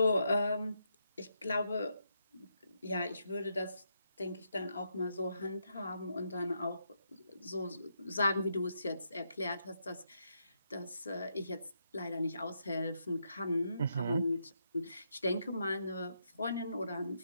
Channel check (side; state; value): both; inverted; correlation -0.80